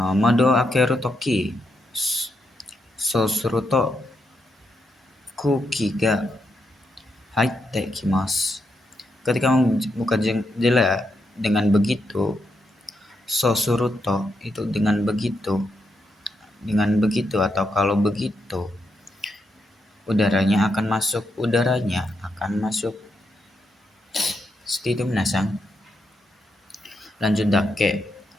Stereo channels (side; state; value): both; normal; correlation 0.82